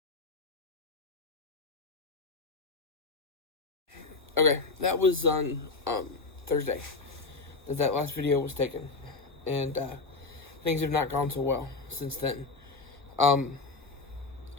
it. Okay, that was on Thursday that last video was taken, and things have not gone so well since then. I'm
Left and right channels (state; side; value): quieter; right; 3.8 dB